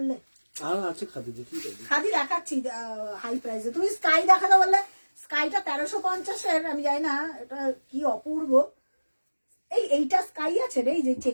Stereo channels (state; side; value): inverted; both; correlation -1.00